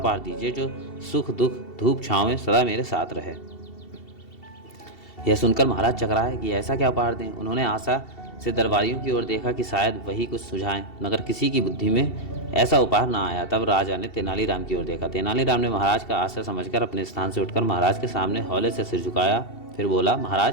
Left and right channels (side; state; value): right; late; 2.7 ms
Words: दीजिए जो सुख दुख धूप छाँव में सदा मेरे साथ रहे। यह सुनकर महाराज चकराए कि ऐसा क्या उपहार दें। उन्होंने आशा से दरबारियों की ओर देखा कि शायद वही कुछ सुझाएं, मगर किसी की बुद्धि में ऐसा उपहार ना आया। तब राजा ने तेनालीराम की ओर देखा। तेनालीराम ने महाराज का आशय समझकर अपने स्थान से उठकर महाराज के सामने हौले से सिर झुकाया। फिर बोला,